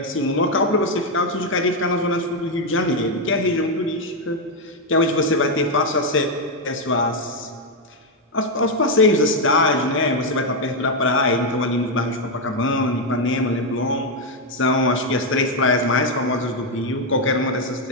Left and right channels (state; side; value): normal; both; correlation 0.03